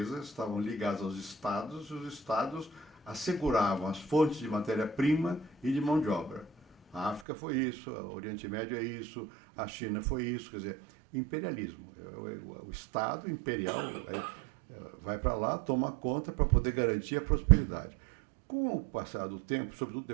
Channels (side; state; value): left; drops out; at 7.2 s